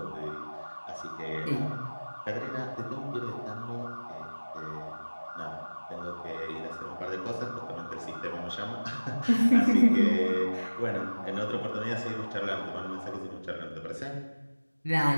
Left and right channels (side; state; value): both; inverted; correlation -1.00